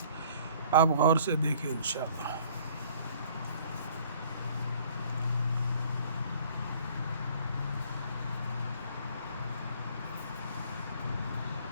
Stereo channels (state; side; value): inverted; both; correlation -0.55